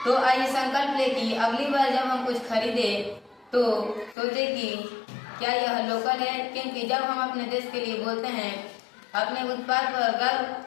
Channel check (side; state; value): right; drops out; at 4.2 s